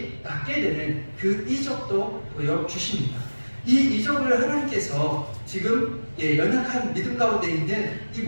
낫게 되는 그 이적도 보여주십니다. 이 이적을 하나님께서 지금 연약한 믿음 가운데 있는 이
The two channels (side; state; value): both; inverted; correlation -1.00